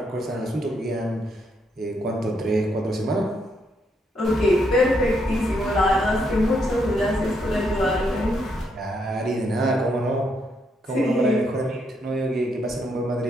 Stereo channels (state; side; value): normal; both; correlation 0.76